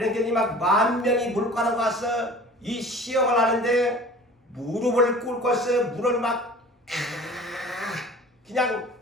막 10,000명이 물가로 가서 이 시험을 하는데 무릎을 꿇고서 물을 막 그냥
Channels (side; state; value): both; normal; correlation 0.43